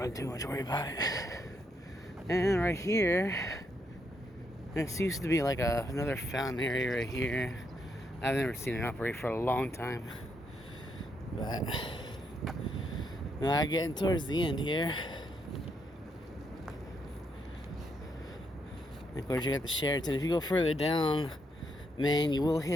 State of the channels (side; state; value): both; normal; correlation 0.77